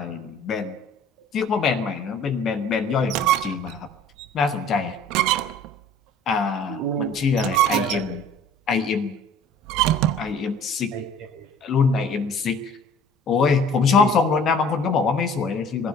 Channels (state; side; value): normal; both; correlation 0.49